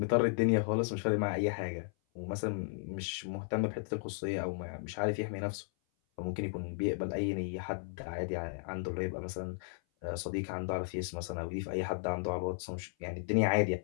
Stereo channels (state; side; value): silent; right; 54 dB below the other